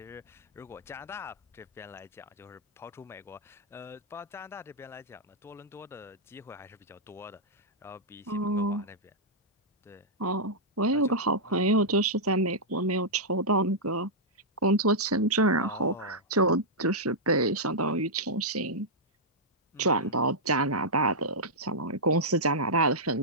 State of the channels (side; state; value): both; normal; correlation -0.09